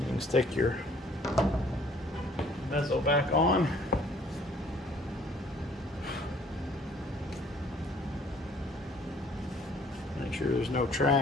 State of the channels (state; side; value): normal; both; correlation 0.58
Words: stick your bezel back on. Make sure there's no